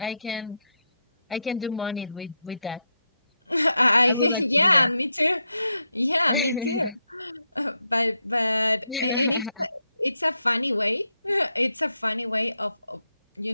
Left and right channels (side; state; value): both; inverted; correlation -0.84